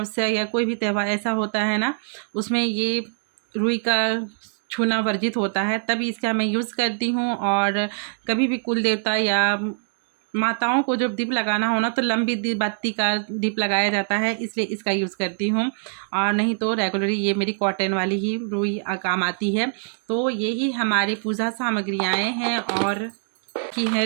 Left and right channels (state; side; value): silent; left; digital silence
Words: या कोई भी त्यौहार ऐसा होता है ना, उसमें ये रुई का छूना वर्जित होता है, तभी इसका मैं यूज़ करती हूँ। और कभी भी कुल देवता या माताओं को जब दीप लगाना हो ना, तो लंबी बत्ती का दीप लगाया जाता है, इसलिए इसका यूज़ करती हूँ। और नहीं तो रेगुलरली ये मेरी कॉटन वाली ही रुई काम आती है। तो यही हमारी पूजा सामग्रियाँ हैं। और की